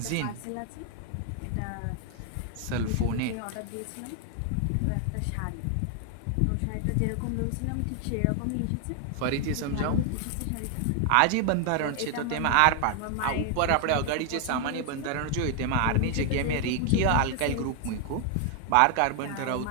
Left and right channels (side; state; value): both; different; correlation 0.00